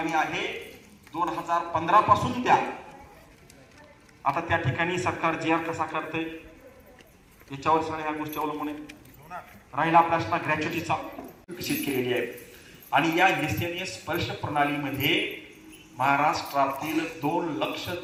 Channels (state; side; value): identical; both; correlation 1.00